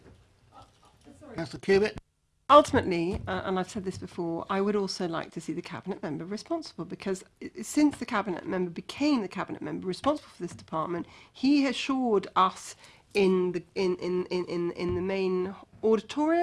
Councillor Cubitt. Ultimately, and I've said this before, I would also like to see the cabinet member responsible, because since the cabinet member became the cabinet member responsible for this department, he assured us in the main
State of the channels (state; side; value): identical; both; correlation 1.00